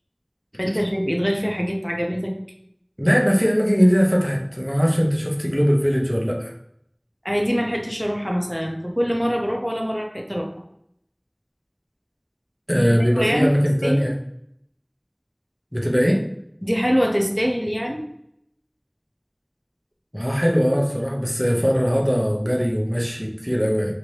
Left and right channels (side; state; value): both; identical; correlation 1.00